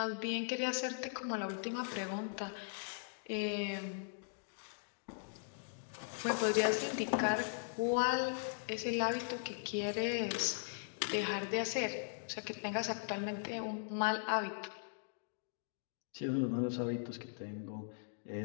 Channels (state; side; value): silent; right; digital silence